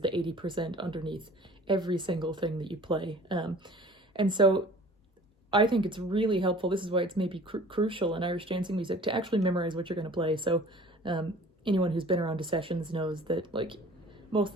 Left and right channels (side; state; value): both; normal; correlation 0.47